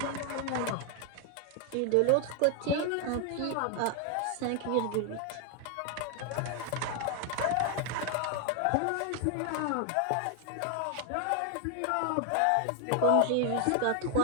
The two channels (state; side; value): different; both; correlation 0.00